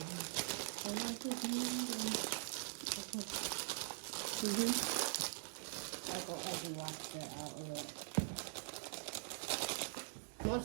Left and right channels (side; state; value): left; silent; digital silence